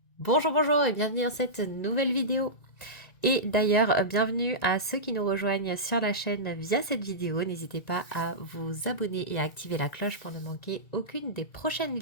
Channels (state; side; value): late; right; 1.9 ms